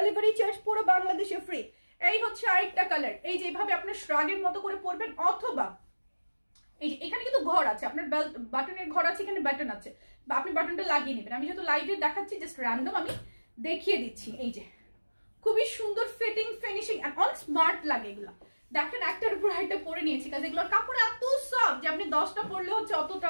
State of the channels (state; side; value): inverted; both; correlation -1.00